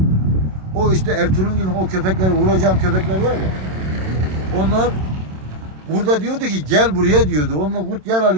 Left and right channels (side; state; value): left; late; 27 ms